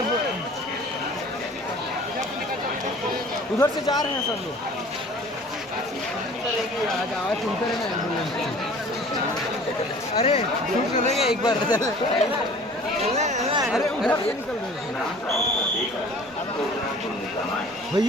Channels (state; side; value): normal; both; correlation 0.47